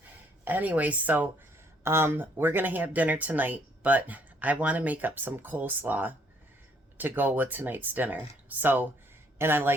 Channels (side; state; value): both; normal; correlation 0.66